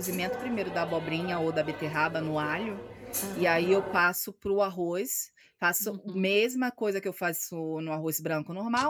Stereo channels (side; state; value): both; identical; correlation 1.00